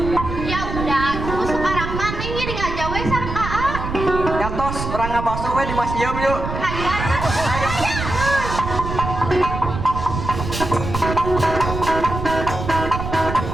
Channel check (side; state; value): right; noise; rumble, 5 dB below the sound